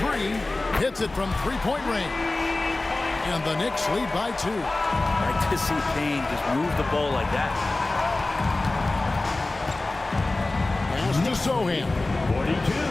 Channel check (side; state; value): right; quieter; 3.0 dB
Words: Hits it from three-point range. And the Knicks lead by 2. I like to see Payne just move the ball like that. To Sohan.